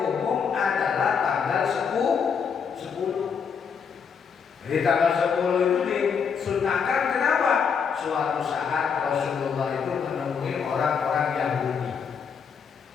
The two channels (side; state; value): right; quieter; 6.6 dB